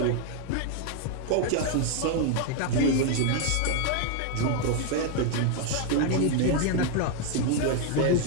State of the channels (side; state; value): both; different; correlation 0.00